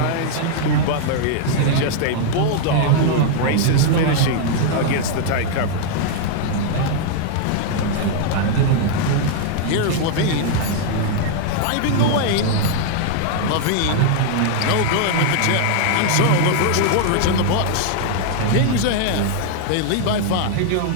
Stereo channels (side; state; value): both; different; correlation -0.01